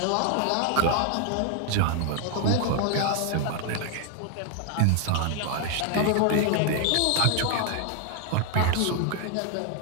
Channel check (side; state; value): both; different; correlation 0.00